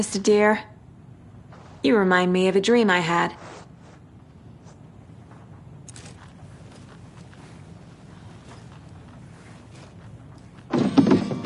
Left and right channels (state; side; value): identical; both; correlation 1.00